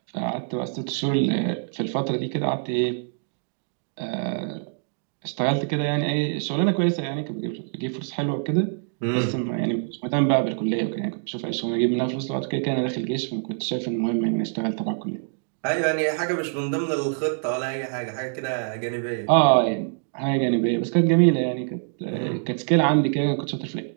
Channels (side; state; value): left; silent; digital silence